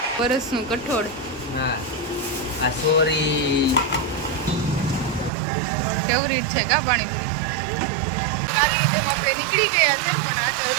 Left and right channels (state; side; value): drops out; left; at 5.3 s